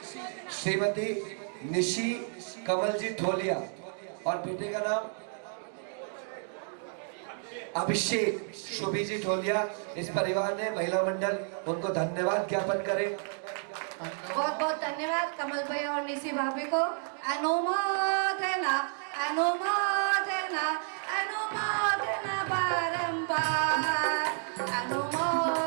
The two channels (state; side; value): silent; left; 56 dB below the other